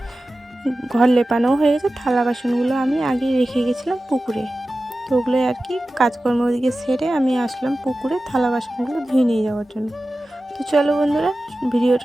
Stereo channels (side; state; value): both; normal; correlation 0.95